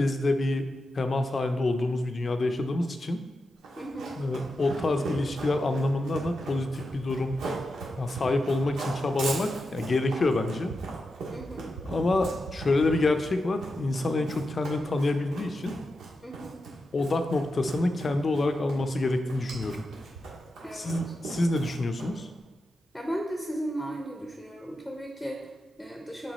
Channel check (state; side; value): normal; both; correlation 0.89